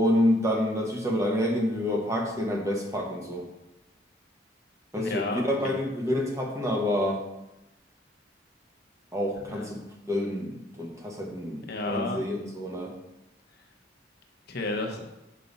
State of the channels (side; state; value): both; normal; correlation 0.63